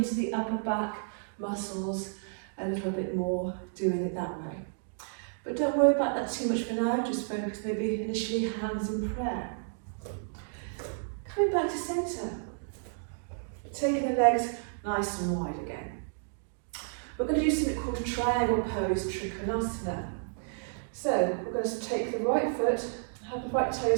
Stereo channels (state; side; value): silent; left; digital silence